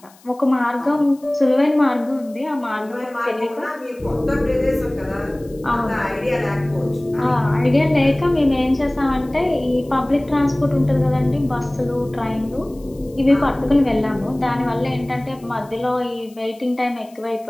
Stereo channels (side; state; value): left; noise; hiss, 28 dB below the sound